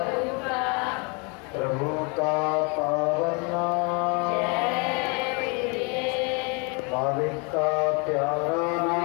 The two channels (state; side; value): quieter; right; 32.7 dB